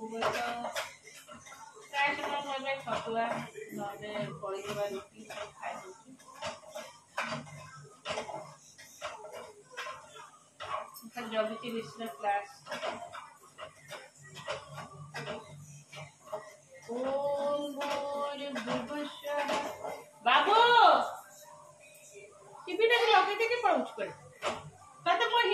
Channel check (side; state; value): both; identical; correlation 1.00